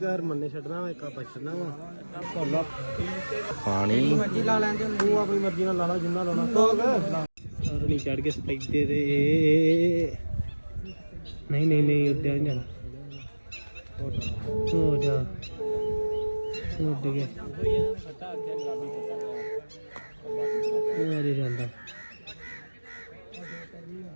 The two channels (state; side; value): inverted; both; correlation -1.00